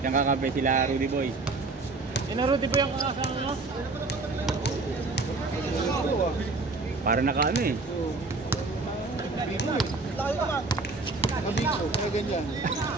Yan kakape sila Rudy Boy. Rudy po yung kakasama mo? Para naka ano eh. Mabiko, kaya ganyan.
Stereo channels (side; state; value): left; quieter; 3.6 dB